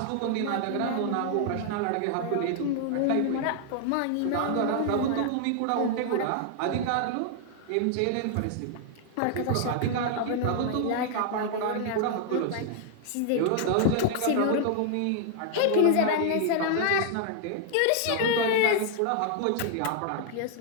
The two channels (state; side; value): different; both; correlation 0.00